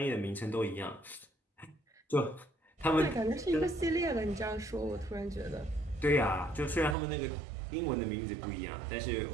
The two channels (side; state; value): left; drops out; at 7.0 s